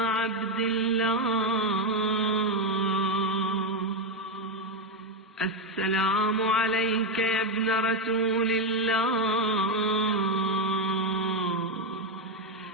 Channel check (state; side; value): normal; both; correlation 0.06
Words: عبد الله. السلام عليك يا ابن رسول الله.